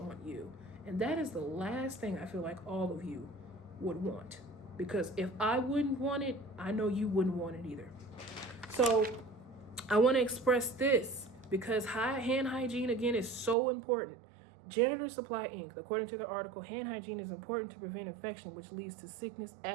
on you. And that is the last thing I feel like all of you would want. Because if I wouldn't want it, I know you wouldn't want it either. So I want to express this because hand hygiene, again, is so important. Janitor Supply Inc., according to the article, hand hygiene is important to prevent infection, which leads to sickness,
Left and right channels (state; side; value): drops out; left; at 13.6 s